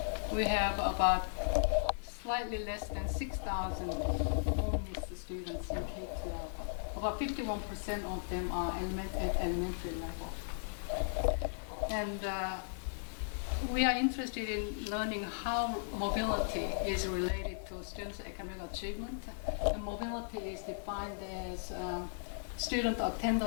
we have about slightly less than 6,000 homeless students in K-12. About 51% of them are at elementary level. And we are interested in learning how mobility is related to students' academic achievement. And mobility is defined as student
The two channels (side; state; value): right; silent; 53 dB below the other